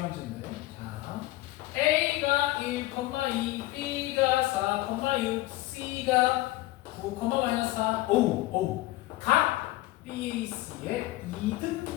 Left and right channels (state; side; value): quieter; right; 17.8 dB